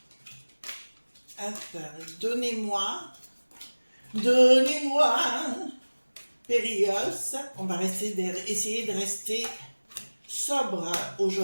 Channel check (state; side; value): inverted; both; correlation -1.00